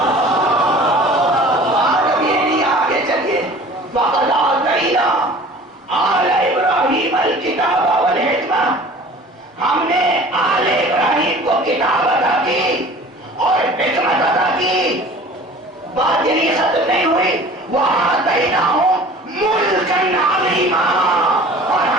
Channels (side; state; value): both; normal; correlation 0.44